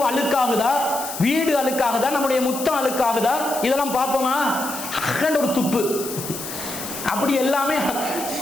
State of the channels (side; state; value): left; noise; hiss, 8 dB below the sound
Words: அழுக்காகுதா, வீடு அழுக்காகுதா, நம்முடைய முத்தம் அழுக்காகுதா, இதெல்லாம் பார்ப்போமா? ஒரு துப்பு. அப்படி எல்லாமே